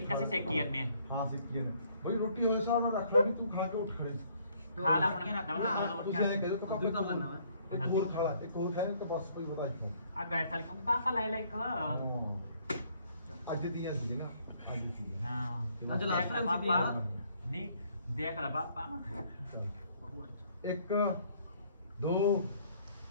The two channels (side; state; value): both; inverted; correlation -0.64